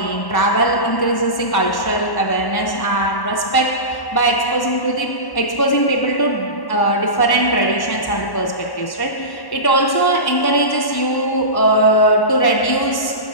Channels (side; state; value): right; late; 1.1 ms